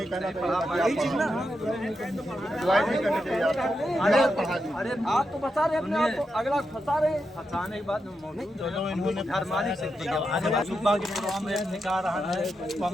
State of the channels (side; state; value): both; normal; correlation 0.86